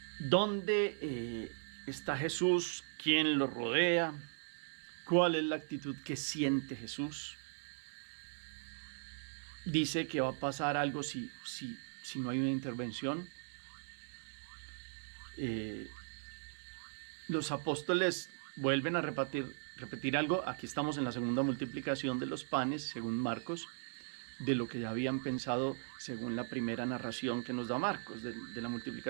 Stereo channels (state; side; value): silent; left; 52 dB below the other